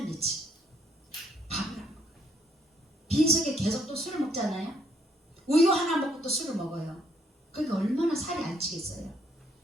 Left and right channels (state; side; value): normal; both; correlation 0.69